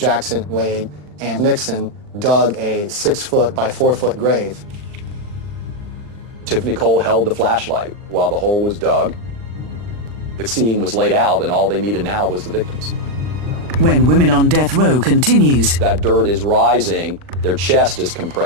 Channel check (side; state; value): left; late; 40 ms